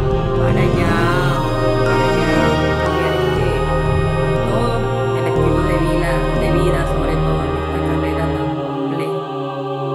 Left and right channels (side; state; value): both; identical; correlation 1.00